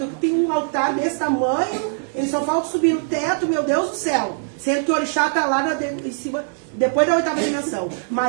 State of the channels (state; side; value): silent; left; digital silence